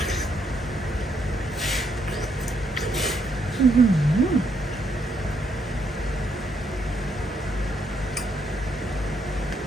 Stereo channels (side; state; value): both; normal; correlation 0.75